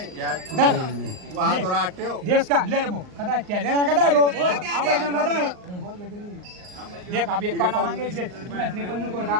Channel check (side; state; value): left; late; 38 ms